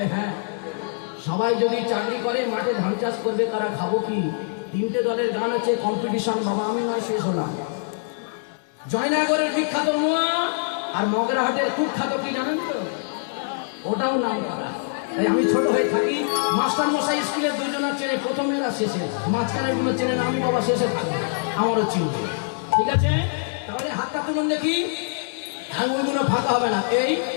হ্যাঁ, সবাই যদি চাকরি করে মাঠে ধান চাষ করবে, তারা খাবো কি? তিনটে দলের গান আছে, কম্পিটিশন। বাবা আমি নয়, শেষ হলাম। জয়নগরের বিখ্যাত মোয়া আর মগরাহাটের কুখ্যাত কি জানেন তো? ওটাও নাম করা। তাই আমি ছোট হয়ে থাকি, মাস্টার মশাই স্কুলের দুজনের চেনে, প্রথমেরা শেষে, মাঝখানের গুলো চেনে না। আমি বাবা শেষে থাকবো, আমারও চিনবে। ঠিক আছে, তাহলে হাতটা তুলুন দেখি, আঙুলগুলো ফাঁকা হবে না। এই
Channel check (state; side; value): silent; right; digital silence